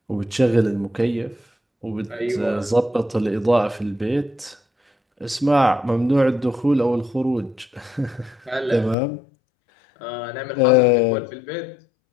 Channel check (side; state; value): right; drops out; at 9.0 s